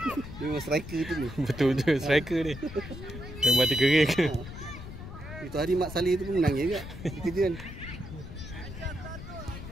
Dia memang striker tu ni. Betul striker ni. Dia mati kering ke? Itu hari Mak Saleh tu pun menangis juga. Dia kerja kan.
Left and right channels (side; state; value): left; noise; rumble, 11 dB below the sound